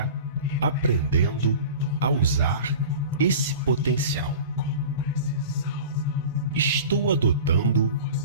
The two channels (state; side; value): inverted; both; correlation -0.36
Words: aprendendo a usar esse potencial. Estou adotando